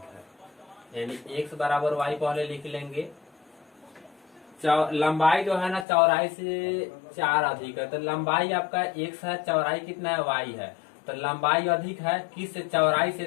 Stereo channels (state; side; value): drops out; right; at 5.9 s